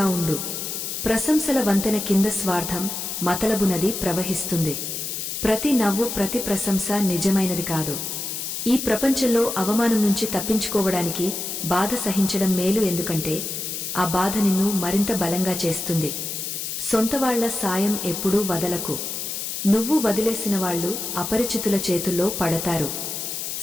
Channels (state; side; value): noise; left; hiss, 4 dB below the sound